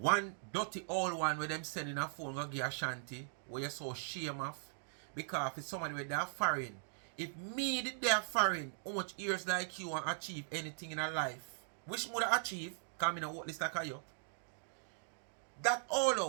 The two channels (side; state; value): left; silent; digital silence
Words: dirty old one where them sending a phone go give a shanty where you're so shame of. Because if it's somebody where they're foreign, if me did they're foreign, how much years like you want achieve anything in a life? Which would I achieve? Come in a what list like you. That old